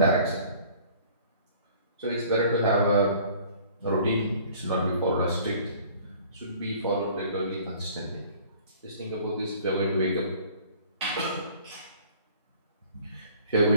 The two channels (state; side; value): inverted; both; correlation -0.52